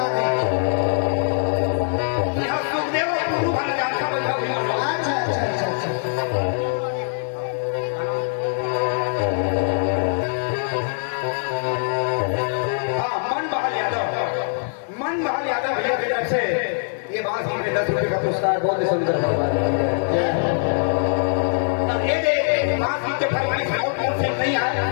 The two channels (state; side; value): silent; right; digital silence